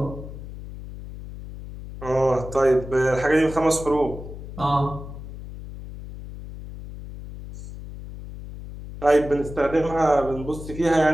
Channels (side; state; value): left; noise; hum, 12 dB below the sound